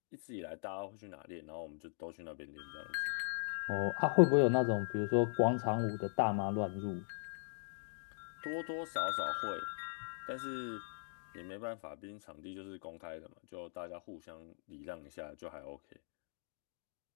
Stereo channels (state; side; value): silent; right; digital silence